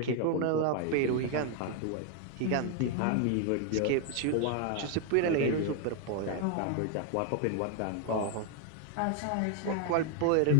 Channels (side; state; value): both; different; correlation 0.00